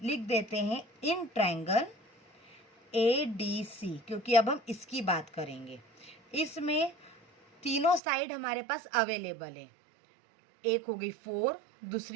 लिख देते हैं इन ट्रायंगल ADC, क्योंकि अब हम इसकी बात करेंगे। इसमें तीनों साइड हमारे पास अवेलेबल है, एक हो गई 4,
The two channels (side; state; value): left; drops out; at 8.0 s